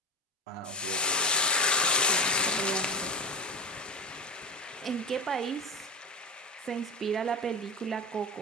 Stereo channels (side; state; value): both; normal; correlation 0.22